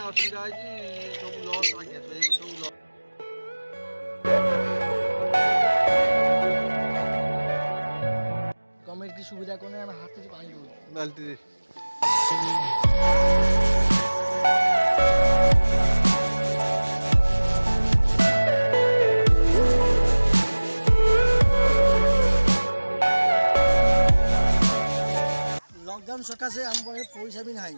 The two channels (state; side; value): inverted; both; correlation -1.00